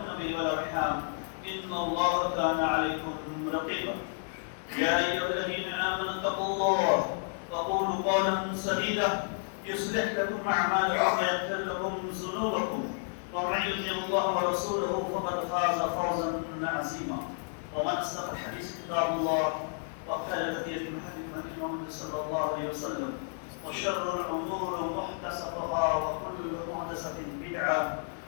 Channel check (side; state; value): right; silent; 57 dB below the other